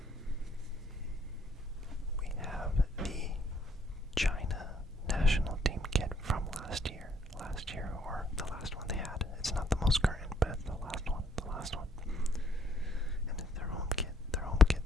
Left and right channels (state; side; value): normal; both; correlation 0.65